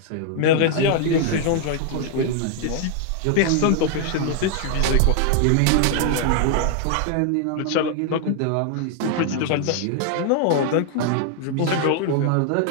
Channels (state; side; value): different; both; correlation 0.00